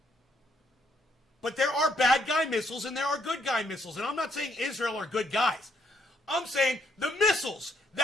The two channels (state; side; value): normal; both; correlation 0.71